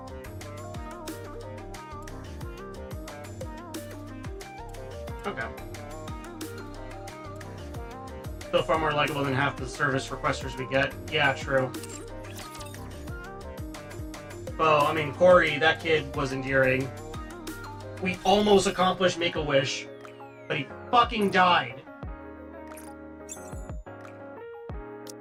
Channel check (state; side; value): identical; both; correlation 1.00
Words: Okay. Still far more likable than half the service requesters we get. Yeah, true. Well, I mean, Corey, that kid was endearing. We almost accomplished Make-A-Wish, but he fucking died.